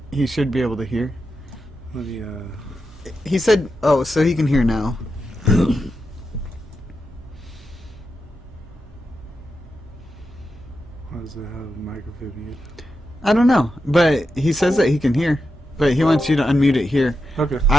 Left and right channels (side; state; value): both; normal; correlation 0.88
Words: he should be able to hear. Let me, He said, oh, so he can hear now. Why does it have microphone mute? I don't know, but he says that he can hear. But he wants you to unmute it here. Okay.